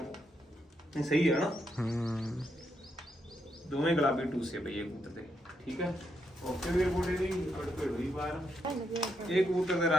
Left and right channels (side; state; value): both; normal; correlation 0.80